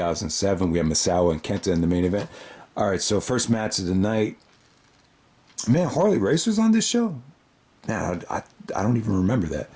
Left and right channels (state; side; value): identical; both; correlation 1.00